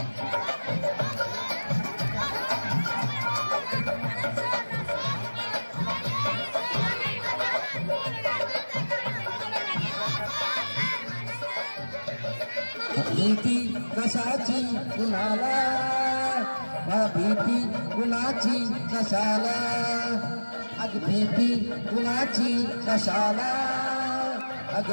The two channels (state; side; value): inverted; both; correlation -1.00